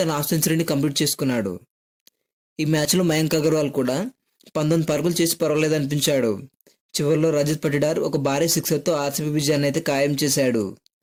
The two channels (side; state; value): both; identical; correlation 1.00